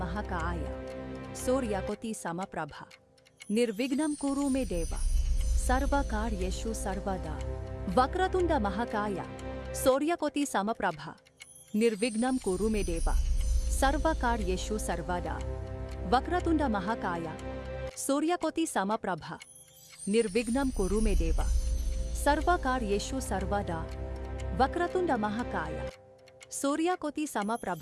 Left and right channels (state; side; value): identical; both; correlation 1.00